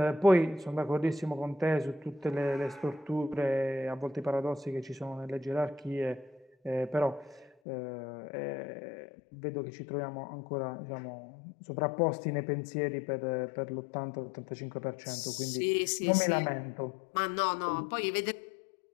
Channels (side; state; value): right; drops out; at 7.5 s